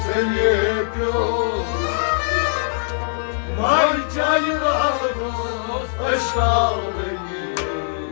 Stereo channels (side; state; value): right; silent; digital silence